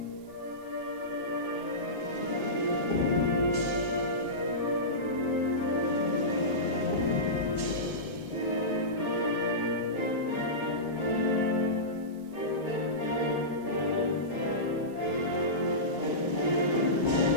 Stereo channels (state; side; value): normal; both; correlation -0.18